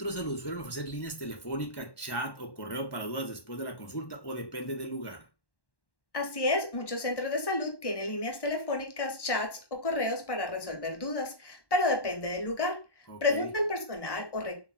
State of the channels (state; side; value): late; right; 1.1 ms